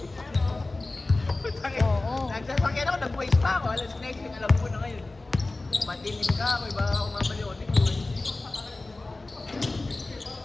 Nagsasakyan ako, nag-waste pa ako. Alas next thing, alam ko na ngayon. Matilim ka ako, iba ako mamaliotin ko.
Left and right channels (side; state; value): right; quieter; 3.1 dB